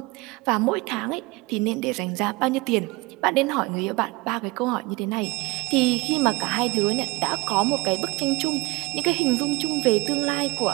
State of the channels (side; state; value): left; quieter; 23.5 dB